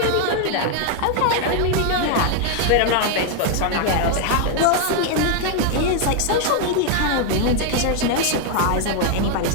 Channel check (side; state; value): both; different; correlation 0.00